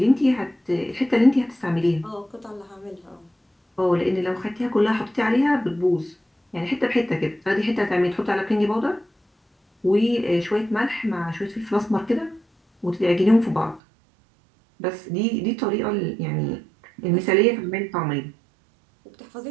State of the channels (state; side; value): drops out; left; at 13.8 s